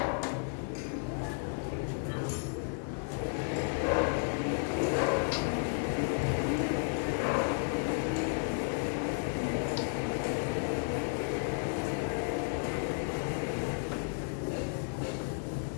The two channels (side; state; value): right; silent; 56 dB below the other